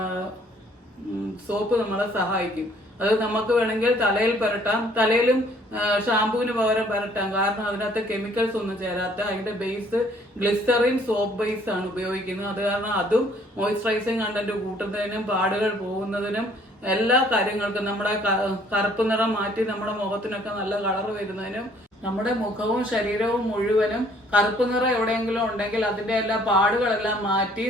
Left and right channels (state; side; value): normal; both; correlation 0.60